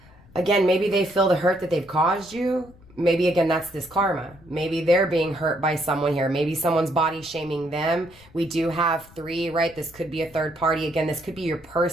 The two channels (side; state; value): left; noise; rumble, 24 dB below the sound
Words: maybe they feel the hurt that they've caused you. Maybe, again, that's this karma. Maybe they're being hurt by someone here. Maybe someone's body shaming them. We do have 3, right? This could be a third party. Again, this could be your